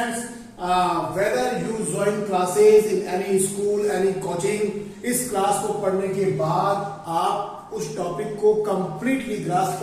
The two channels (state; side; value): identical; both; correlation 1.00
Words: whether you join classes in any school, any coaching, इस क्लास को पढ़ने के बाद आप उस टॉपिक को कंप्लीटली ग्रास्प